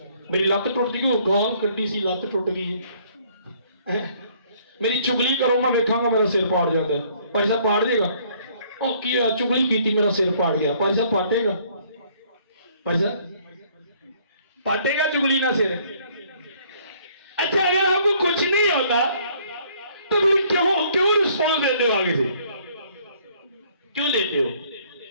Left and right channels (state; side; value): inverted; both; correlation -0.62